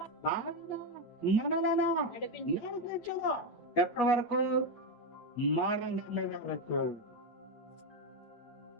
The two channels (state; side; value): late; right; 8.4 ms